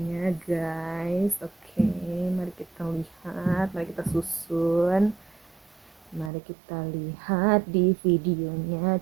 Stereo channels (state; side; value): drops out; left; at 6.3 s